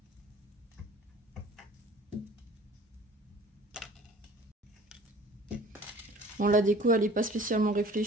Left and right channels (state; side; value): normal; both; correlation 0.48